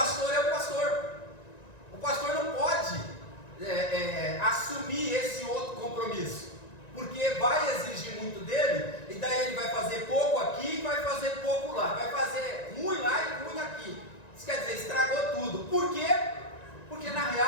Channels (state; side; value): late; right; 1.9 ms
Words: é o pastor não pode assumir esse outro compromisso. porque vai exigir muito dele, e daí ele vai fazer pouco aqui e vai fazer pouco lá, vai fazer ruim lá e ruim aqui. Isso quer dizer, estragou tudo. Por quê? Porque na